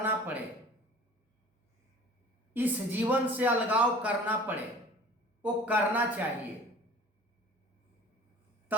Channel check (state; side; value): normal; both; correlation 0.45